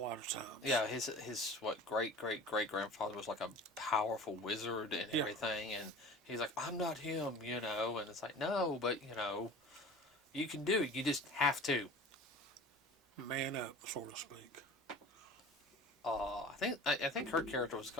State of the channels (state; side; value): normal; both; correlation 0.40